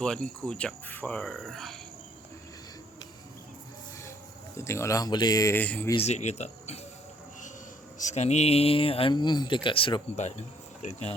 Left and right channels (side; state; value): both; normal; correlation 0.64